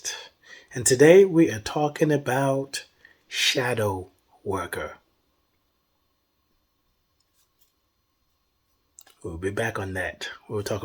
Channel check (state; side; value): identical; both; correlation 1.00